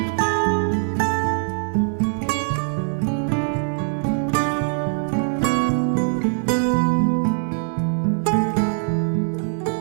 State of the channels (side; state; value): left; silent; 60 dB below the other